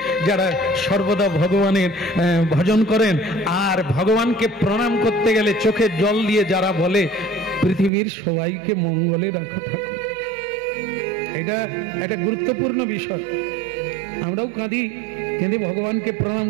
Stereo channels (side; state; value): left; drops out; at 7.9 s